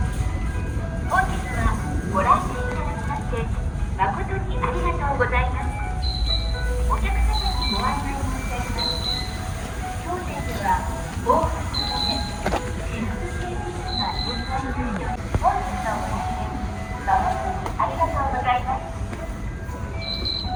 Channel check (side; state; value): both; identical; correlation 1.00